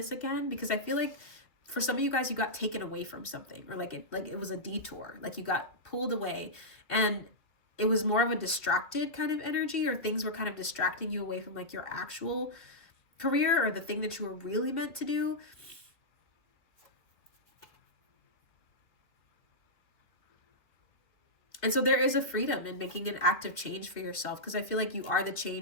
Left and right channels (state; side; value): late; right; 2.4 ms